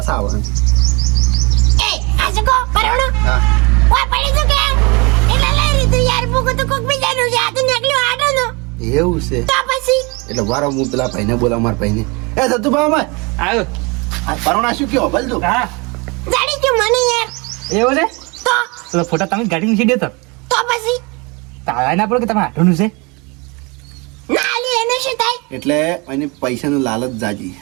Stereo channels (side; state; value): left; quieter; 28.4 dB